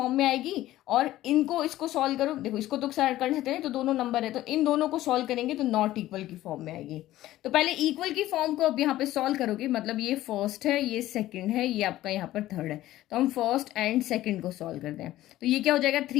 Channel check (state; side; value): quieter; right; 15.0 dB